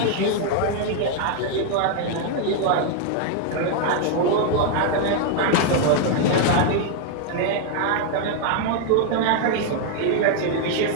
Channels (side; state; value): both; different; correlation 0.00